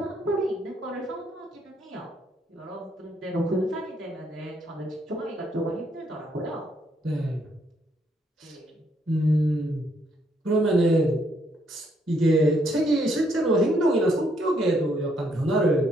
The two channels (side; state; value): both; normal; correlation 0.72